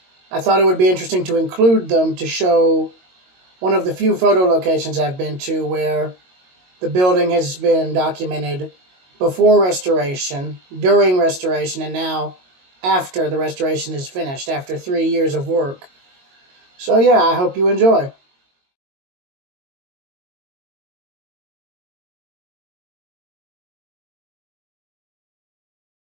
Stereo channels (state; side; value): late; left; 22 ms